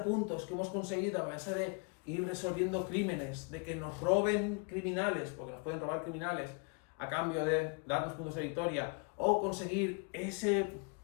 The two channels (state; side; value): quieter; right; 34.9 dB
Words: puntos que hemos conseguido a base de ir resolviendo crímenes, de que nos roben criminales, porque nos pueden robar criminales a cambio de darnos puntos de victoria, o conseguir ese